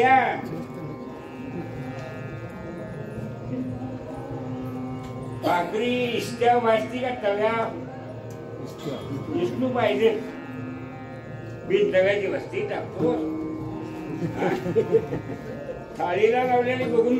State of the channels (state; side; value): identical; both; correlation 1.00